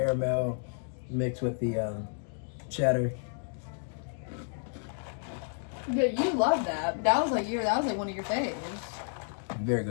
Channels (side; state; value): right; silent; digital silence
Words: mixed with the cheddar. yeah, you love that. That was like one of your faves. Very